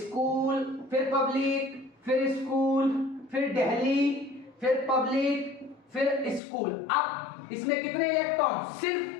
फिर पब्लिक, फिर स्कूल, फिर दिल्ली, फिर पब्लिक, फिर स्कूल। अब इसमें कितने इलेक्ट्रॉन,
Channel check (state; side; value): drops out; right; at 6.4 s